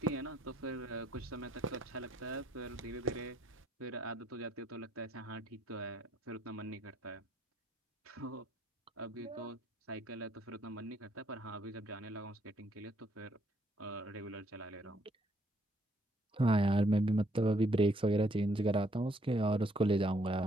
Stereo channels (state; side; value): normal; both; correlation 0.69